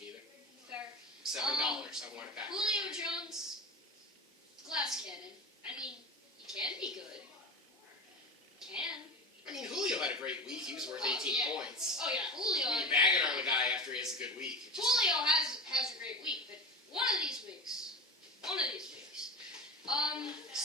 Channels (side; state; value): both; normal; correlation 0.29